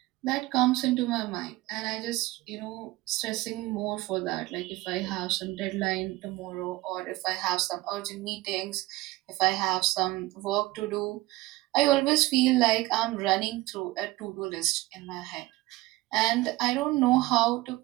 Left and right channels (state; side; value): quieter; left; 19.2 dB